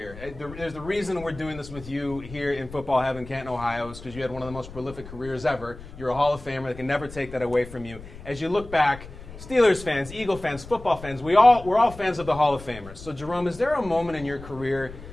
There's the reason we're doing this with you here in Football Heaven, Canton, Ohio, is because you had one of the most prolific careers ever. You're a Hall of Famer. They can never take that away from you. As you look back, Steelers fans, Eagle fans, football fans, we're all fans of the Hall of Famers. So, Jerome, is there a moment in your career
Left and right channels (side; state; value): left; noise; rumble, 15 dB below the sound